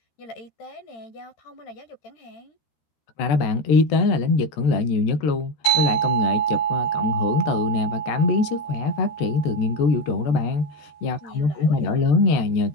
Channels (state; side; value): late; right; 13 ms